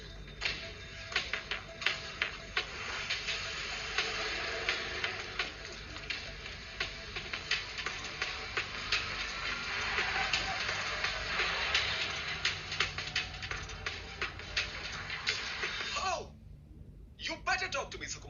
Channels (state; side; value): identical; both; correlation 1.00